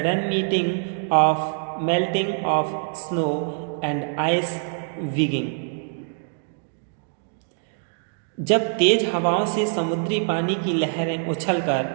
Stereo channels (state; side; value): silent; left; digital silence